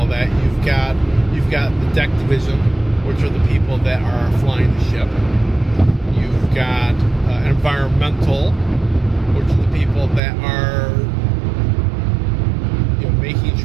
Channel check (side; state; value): left; drops out; at 10.2 s